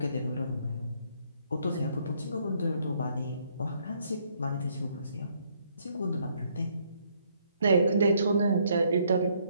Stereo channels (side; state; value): both; inverted; correlation -0.69